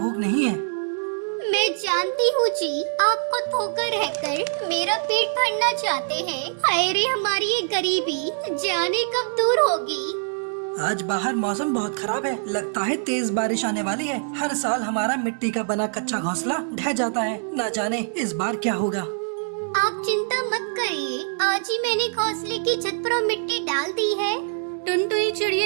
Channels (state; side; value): silent; left; 62 dB below the other